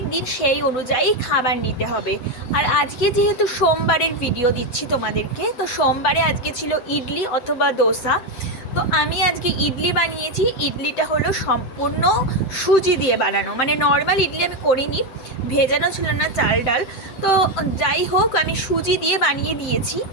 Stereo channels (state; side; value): late; right; 7.8 ms